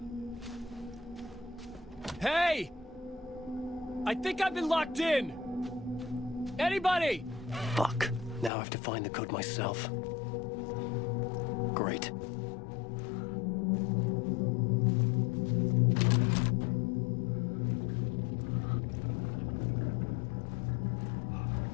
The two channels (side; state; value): right; drops out; at 8.5 s